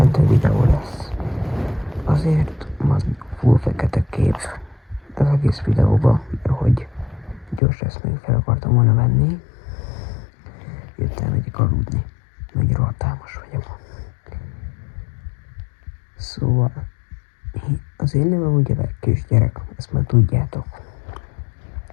videó lesz. Azért van full fekete kép az egész videóban, mert hogy gyors ezt még fel akartam volna venni. Jöttem megyek aludni, mert rohadt álmos vagyok. Szóval, az én nevem ugye kisgyerek, ezt már tudjátok.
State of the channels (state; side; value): drops out; right; at 7.6 s